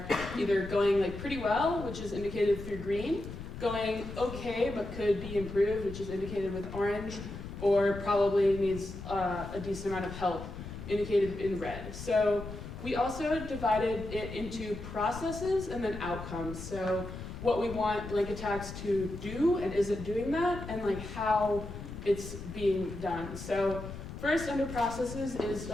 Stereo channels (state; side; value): noise; left; rumble, 10 dB below the sound